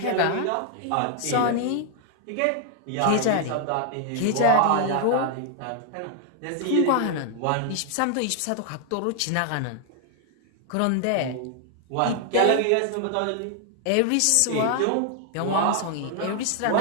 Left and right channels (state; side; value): different; both; correlation 0.00